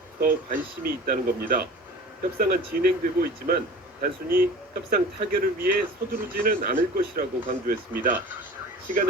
더 관심이 있다는 겁니다. 협상은 진행되고 있지만 단순히 협상 타결을 위해 서두르지는 않을 것이라고 강조했습니다.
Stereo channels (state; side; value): normal; both; correlation 0.40